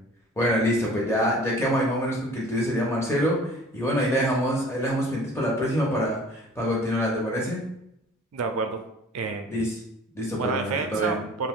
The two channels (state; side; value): normal; both; correlation 0.48